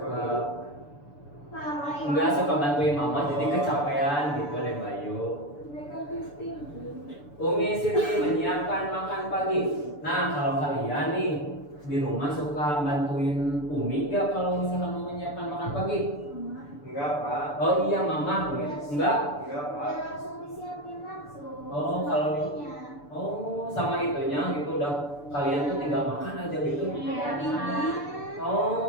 nggak suka bantuin mama jadi kecapean gitu deh Bayu. Negatif tinggi. Umi Siti menyiapkan makan pagi. Nah kalau kalian nih di rumah suka bantuin Umi nggak kalau misalkan mau menyiapkan makan pagi? Enggak, Pak. Oh iya mama, enggak? Enggak, Pak. Ya langsung disiapin langsung. Oh, kalau- Sepertinya. Oh sama itunya gitu udah kalian tuh tinggal makan aja gitu. Iya, Pak.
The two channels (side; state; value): right; late; 6.9 ms